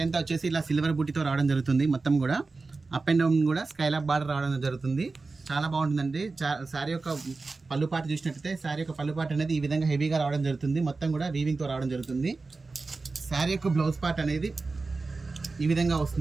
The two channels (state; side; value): quieter; left; 3.9 dB